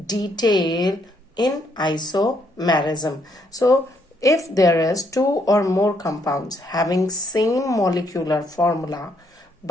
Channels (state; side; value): normal; both; correlation 0.72